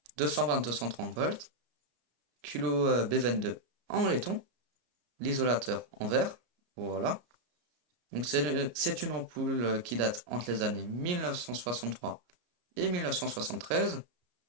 220-230 volts. Kilo B22 en laiton. L'isolateur en verre. Voilà. Donc c'est une ampoule qui date entre les années 1963 et 1973.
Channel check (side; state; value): left; late; 33 ms